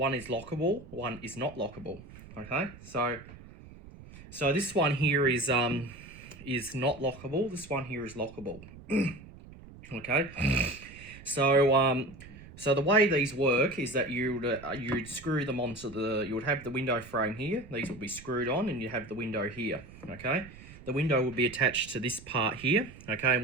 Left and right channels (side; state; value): right; noise; rumble, 18 dB below the sound